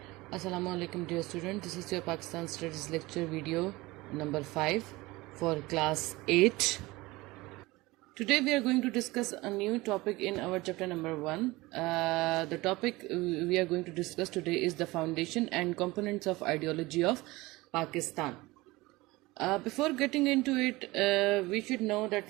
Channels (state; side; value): quieter; left; 20.9 dB